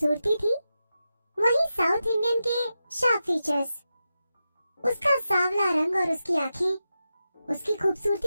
थी, वहीं साउथ इंडियन के शार्प फीचर्स। उसका सांवला रंग और उसकी आंखें उसकी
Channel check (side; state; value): both; inverted; correlation -0.90